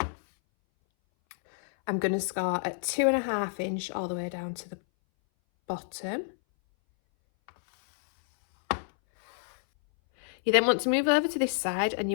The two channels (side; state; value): right; silent; 59 dB below the other